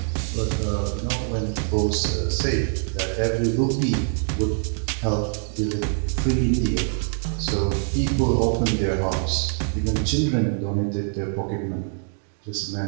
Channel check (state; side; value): silent; left; 62 dB below the other